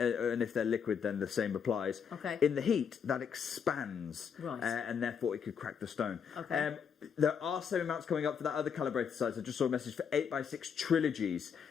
if they're liquid, then the same applies. Okay. In the heat, that expands. Right. And therefore it could crack the stone. Okay. There are same amounts coming up for that other calibrated size. I just saw a message for 8x6 trilogies.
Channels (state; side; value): quieter; right; 7.0 dB